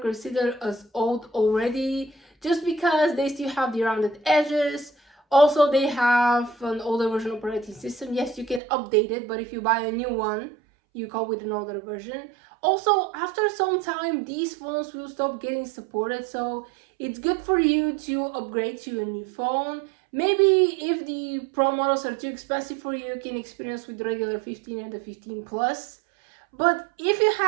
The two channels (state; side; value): drops out; left; at 8.6 s